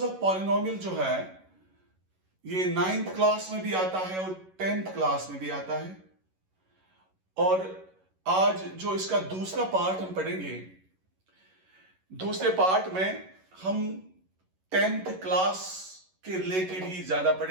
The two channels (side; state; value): left; late; 11 ms